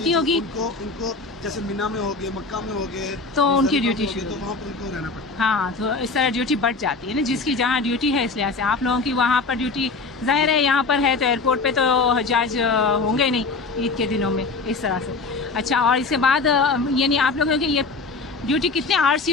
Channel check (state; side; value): quieter; right; 4.1 dB